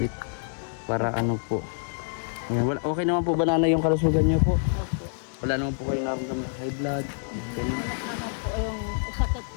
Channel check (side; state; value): right; silent; digital silence